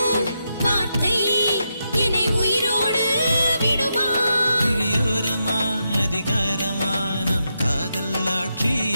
வார்த்தை என்னை உயிரோடு விடுமா இழியோரமா அதிகாரமா நம் காதல் ஆட்சி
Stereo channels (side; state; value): both; inverted; correlation -0.84